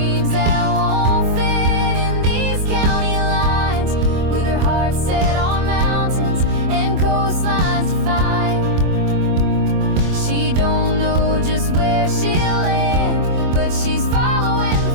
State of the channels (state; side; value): late; left; 24 ms